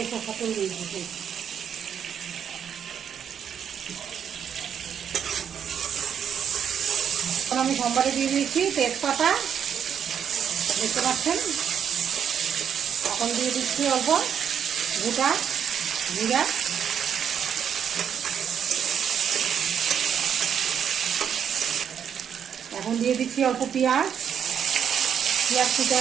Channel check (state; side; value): quieter; left; 8.3 dB